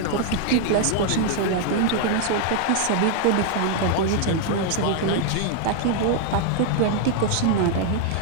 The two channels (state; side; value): different; both; correlation 0.00